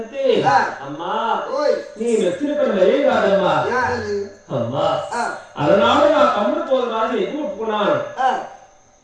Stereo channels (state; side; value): identical; both; correlation 1.00